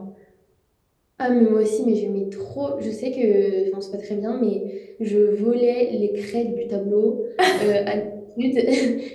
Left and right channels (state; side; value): identical; both; correlation 1.00